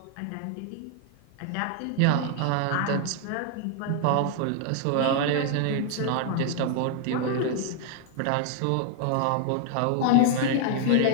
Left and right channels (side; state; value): both; different; correlation 0.00